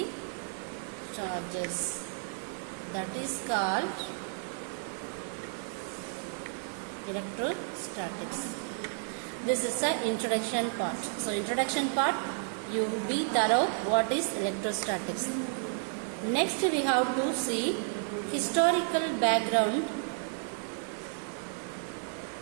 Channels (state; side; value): silent; left; 56 dB below the other